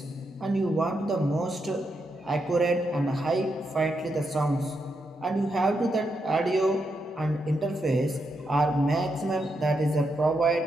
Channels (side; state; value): both; normal; correlation 0.83